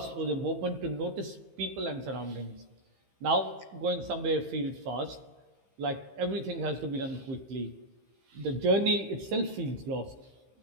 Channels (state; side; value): late; left; 15 ms